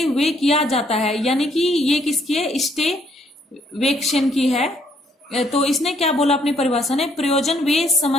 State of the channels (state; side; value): normal; both; correlation 0.68